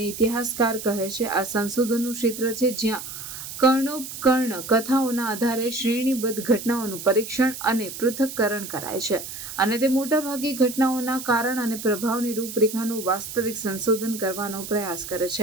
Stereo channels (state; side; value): noise; right; hiss, 10 dB below the sound